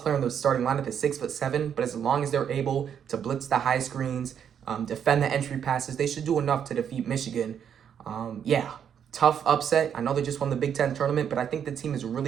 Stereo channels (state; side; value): quieter; left; 8.4 dB